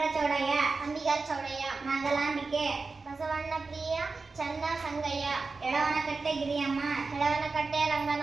ಚೌಡಯ್ಯ, ಅಂಬಿಗರ ಚೌಡಯ್ಯ, ನಾಗಲಾಂಬಿಕೆ, ಬಸವಣ್ಣ ಪ್ರಿಯ, ಚನ್ನ ಸಂಗಯ್ಯ, ಎಳವನಕಟ್ಟೆ ಗಿರಿಯಮ್ಮ, ಹೆಳವನಕಟ್ಟೆ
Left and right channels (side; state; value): left; quieter; 4.1 dB